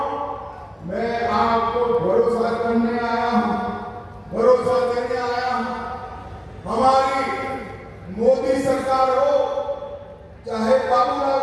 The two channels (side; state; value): both; identical; correlation 1.00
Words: मैं आपको भरोसा करने आया हूं, भरोसा देने आया हूं। हमारी मोदी सरकार हो, चाहे बाबूलाल